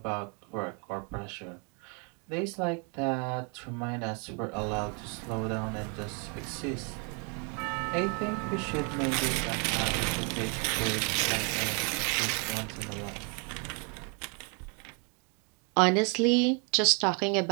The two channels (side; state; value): left; quieter; 35.9 dB